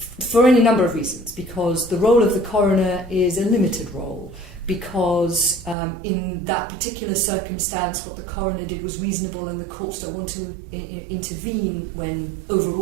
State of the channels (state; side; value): drops out; left; at 5.8 s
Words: any number of reasons, because the role of the coroner is a limited role, because in that particular circumstance what the coroner did was reasonable and the courts don't want to intervene when